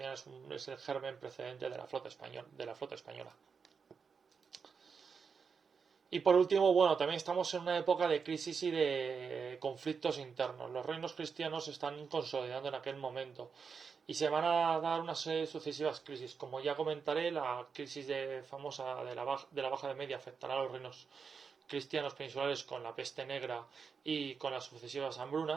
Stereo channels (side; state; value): left; quieter; 5.8 dB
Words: es el germen precedente de la flota española. Y por último, bueno, también estamos en una época de crisis y de conflictos internos. Los reinos cristianos se están consolidando en aquel momento y se van a dar una serie de sucesivas crisis. Como ya comentaré, la crisis famosa de la Baja de Media afectará a los reinos cristianos peninsulares con la peste negra y con las sucesivas